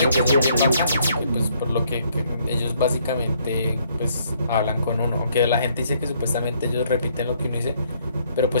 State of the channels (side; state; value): both; inverted; correlation -0.67